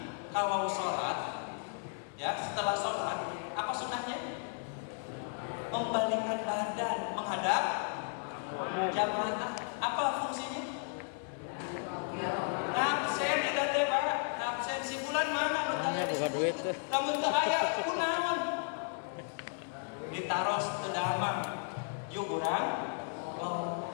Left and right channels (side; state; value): right; silent; 55 dB below the other